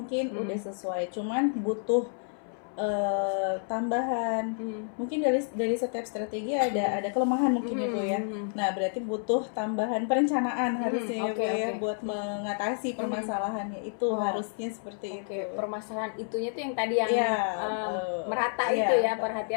udah sesuai, cuman butuh tambahan. Mungkin dari setiap strategi ada kelemahan mungkin ya Bu ya. Nah, berarti butuh tambahan perencanaan harusnya ya Bu ya, buat mengatasi permasalahannya itu. Harusnya seperti itu. Permasalahan itunya tuh yang tadi yang merata itu ya,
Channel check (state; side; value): silent; right; 58 dB below the other